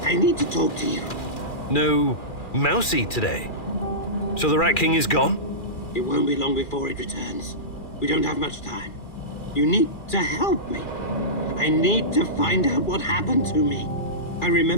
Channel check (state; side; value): late; right; 2.4 ms